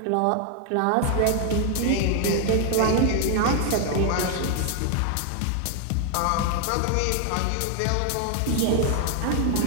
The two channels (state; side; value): different; both; correlation 0.00